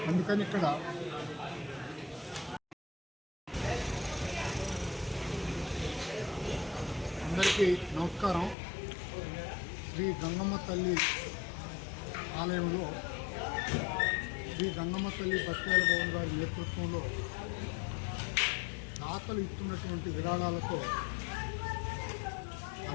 అందుకని ఇక్కడ అందరికీ నమస్కారం. శ్రీ గంగమ్మ తల్లి ఆలయంలో శ్రీ గంగమ్మ తల్లి బత్యాల భవన్ గారి నేతృత్వంలో దాతలు ఇస్తున్నటువంటి విరాళాలతో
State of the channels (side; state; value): right; drops out; at 8.6 s